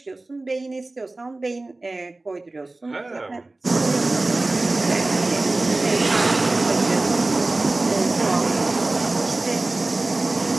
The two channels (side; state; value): left; quieter; 3.0 dB